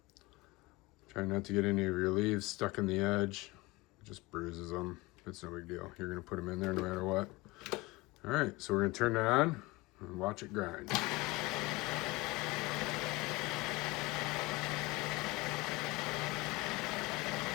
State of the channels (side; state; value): right; quieter; 22.2 dB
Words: Try not to get any of your leaves stuck in the edge. It just bruises them. It's no big deal. You're going to put them in there no matter what. All right, so we're going to turn it on and watch it grind.